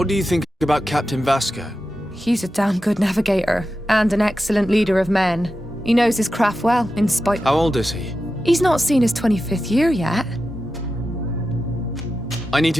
do you think about Captain Vasco? He's a damn good navigator, and an excellent leader of men. He knows his craft well, in spite— How old is he? He's not seen his 25th year yet. I need to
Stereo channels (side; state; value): both; normal; correlation 0.91